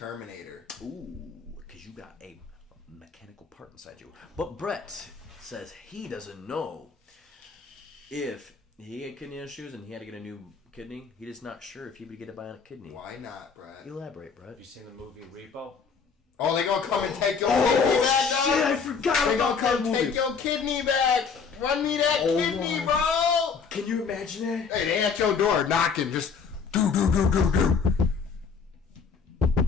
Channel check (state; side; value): quieter; right; 5.6 dB